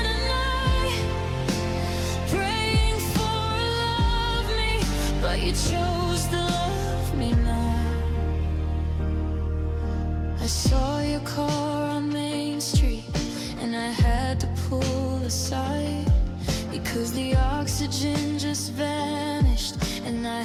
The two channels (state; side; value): identical; both; correlation 1.00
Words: a night, praying for a love me, but you chose to love me not. I saw your car on Main Street and I had to pull aside because the oxygen just vanished and I